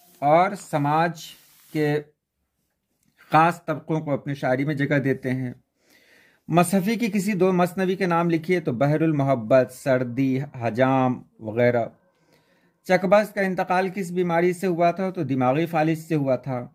और समाज के ख़ास तबकों को अपनी शायरी में जगह देते हैं। मसहफ़ी की किसी दो मसनवी के नाम लिखिए, तो बहरुल मोहब्बत, सर्दी, हजाम वगैरह। चकबस का इंतकाल किस बीमारी से हुआ था? तो दिमागी फालिज से हुआ था।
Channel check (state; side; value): identical; both; correlation 1.00